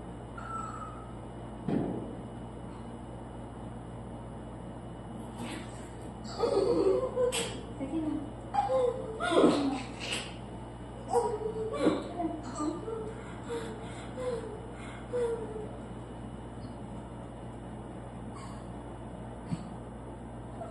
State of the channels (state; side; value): identical; both; correlation 1.00